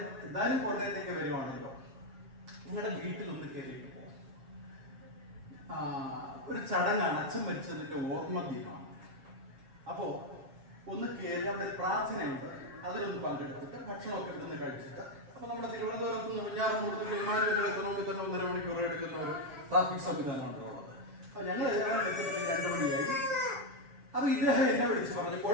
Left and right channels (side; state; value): left; late; 7.4 ms